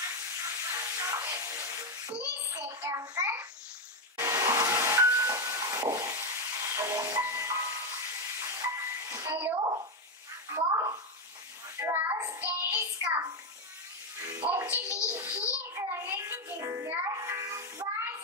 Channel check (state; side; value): normal; both; correlation 0.07